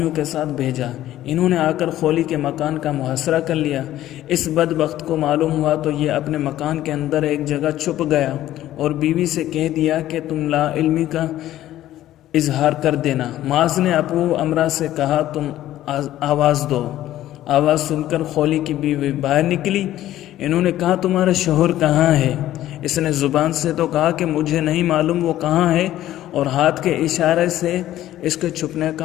کے ساتھ بھیجا۔ انہوں نے آ کر خولی کے مکان کا محاصرہ کر لیا۔ اس بدبخت کو معلوم ہوا تو یہ اپنے مکان کے اندر ایک جگہ چھپ گیا اور بیوی سے کہہ دیا کہ تم لا علمی کا اظہار کر دینا۔ معاذ نے ابو امرا سے کہا تم آواز دو۔ آواز سن کر خولی کی بیوی باہر نکلی۔ انہوں نے کہا تمہارا شوہر کہاں ہے؟ اس نے زبان سے تو کہا کہ مجھے نہیں معلوم وہ کہاں ہے، اور ہاتھ کے اشارے سے اس کے چھپنے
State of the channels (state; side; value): quieter; right; 13.6 dB